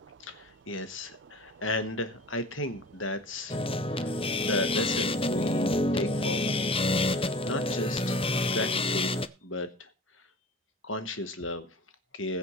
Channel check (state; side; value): normal; both; correlation 0.38